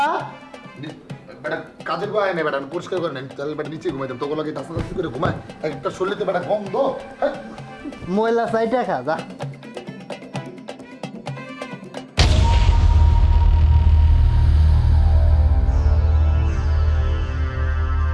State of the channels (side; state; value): both; identical; correlation 1.00